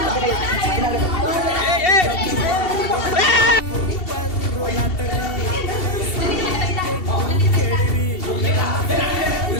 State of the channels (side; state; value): right; late; 2.7 ms